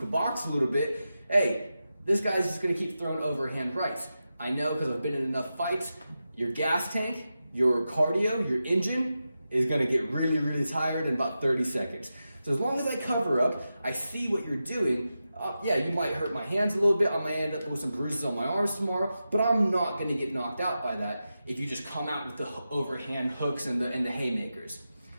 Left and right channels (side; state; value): both; inverted; correlation -0.91